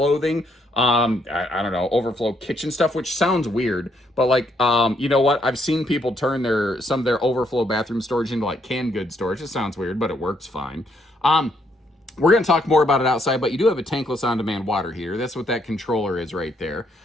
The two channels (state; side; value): normal; both; correlation 0.72